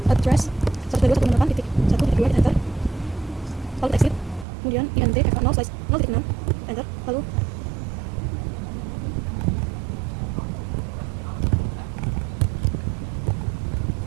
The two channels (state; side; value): drops out; left; at 4.5 s